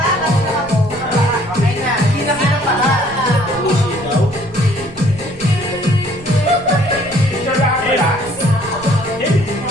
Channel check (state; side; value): noise; right; rumble, 19 dB below the sound